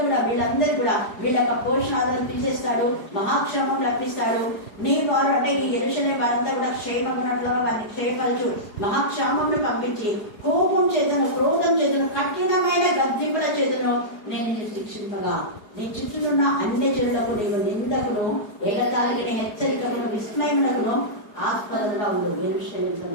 కూడా వీళ్ళందరూ కూడా వీళ్ళ యొక్క పోషణాలను తీసేస్తాడు, మహాక్షేమం రప్పిస్తాడు. నీ వారు అంటే ఈ యెరూషలేము వారంతా కూడా క్షేమం ఉన్నట్లుగా వారిని క్షేమపరచు, మహాక్షేమంను పంపించి కోపం చేతను, క్రోధం చేతను, కఠినమైన గద్దింపుల చేతను నేను నిన్ను శిక్షింపగా నీ చుట్టూనున్న అన్ని జనులకు నీవు నిందకును, ఎగతాళికి హెచ్చరికను, విస్మయమునకును ఆస్పదంగా ఉండదు. యెరూషలేముతో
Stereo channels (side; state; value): right; late; 4.8 ms